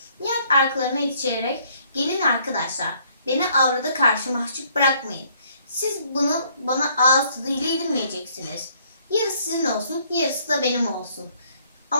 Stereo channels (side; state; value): both; inverted; correlation -0.64